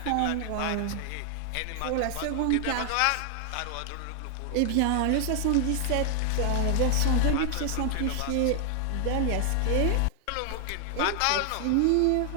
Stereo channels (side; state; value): both; different; correlation 0.00